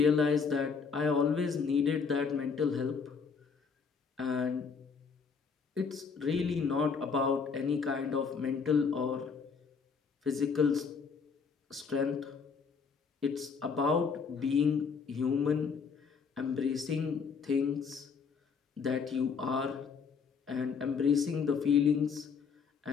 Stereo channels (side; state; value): right; quieter; 5.6 dB